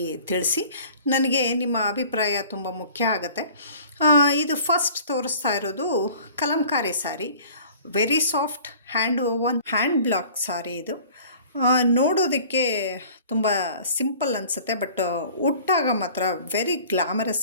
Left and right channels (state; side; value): inverted; both; correlation -0.48